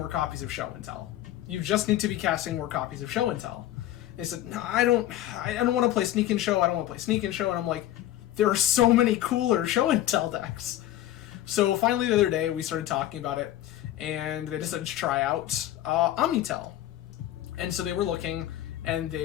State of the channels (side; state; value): right; quieter; 13.5 dB